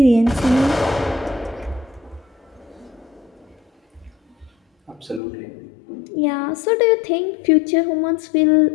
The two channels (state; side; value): drops out; right; at 5.2 s